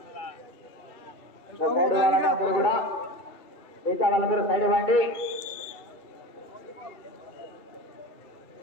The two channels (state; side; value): late; right; 2.7 ms